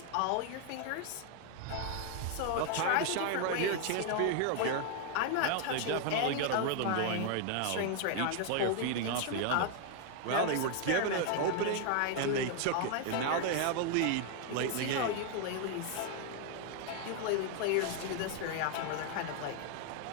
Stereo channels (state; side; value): different; both; correlation 0.00